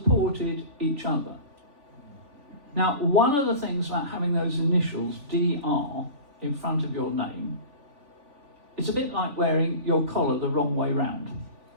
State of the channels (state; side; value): late; left; 3.4 ms